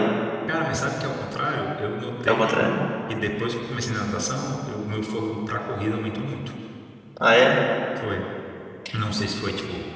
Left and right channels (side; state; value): both; identical; correlation 1.00